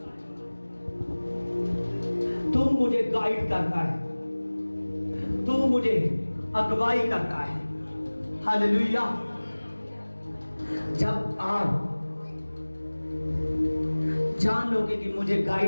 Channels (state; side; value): inverted; both; correlation -1.00